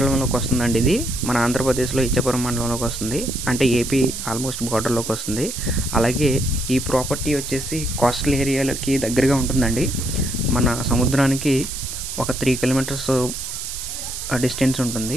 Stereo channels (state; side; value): noise; right; hiss, 7 dB below the sound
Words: వస్తుందండి. ఇది మన ఆంధ్రప్రదేశ్లో ఇచ్చాపురం మండలంలోకి వస్తుంది, అంటే ఏపీ ఆల్మోస్ట్ బార్డర్లోకి వస్తుంది. అలాగే ఈ ప్రాపర్టీ వచ్చేసి కోస్టల్ ఏరియాలకి దగ్గరగా ఉంటుందండి. మన సముద్రానికి ఒక 3 కిలోమీటర్స్ డిస్టెన్స్